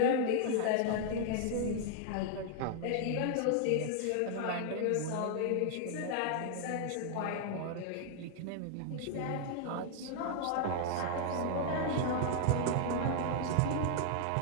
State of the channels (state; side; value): different; both; correlation 0.00